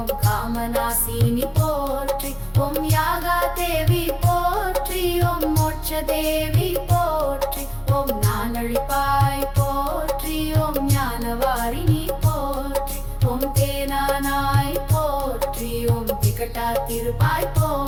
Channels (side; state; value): both; identical; correlation 1.00